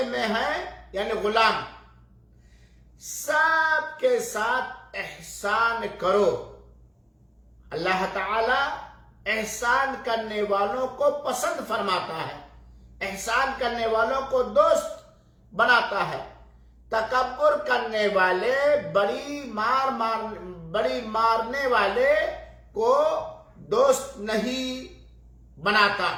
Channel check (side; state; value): both; identical; correlation 1.00